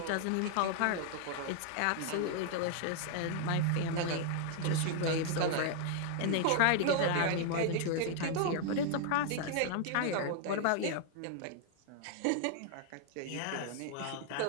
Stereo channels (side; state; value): both; different; correlation 0.00